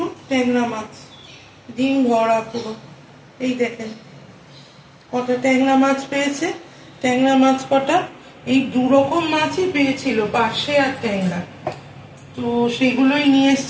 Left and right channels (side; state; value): both; identical; correlation 1.00